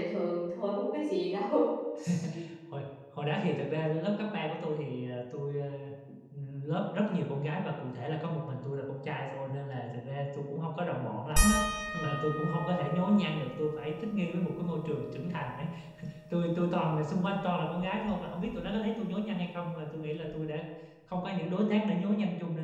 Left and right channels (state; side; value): identical; both; correlation 1.00